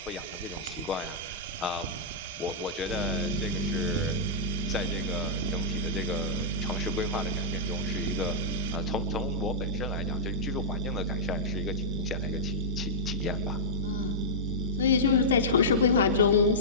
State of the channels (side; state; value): both; normal; correlation -0.14